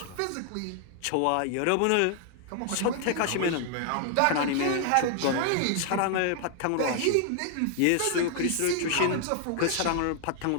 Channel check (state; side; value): different; both; correlation 0.00